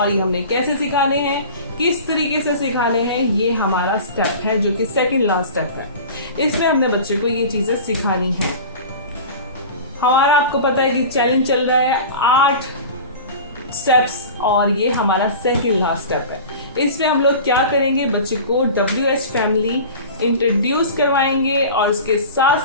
ये हमने कैसे सिखाने हैं, किस तरीके से सिखाने हैं, ये हमारा स्टेप है जो कि सेकंड लास्ट स्टेप है। इसमें हमने बच्चे को ये चीजें सिखानी है। हमारा आपको पता है कि चैलेंज चल रहा है 8 स्टेप्स और ये हमारा सेकंड लास्ट स्टेप है। इसमें हम लोग क्या करेंगे, बच्चे को WH फैमिली इंट्रोड्यूस करवाएंगे और उसके साथ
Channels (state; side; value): inverted; both; correlation -0.36